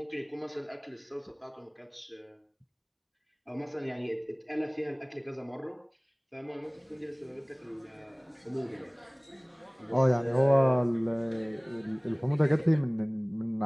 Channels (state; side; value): identical; both; correlation 1.00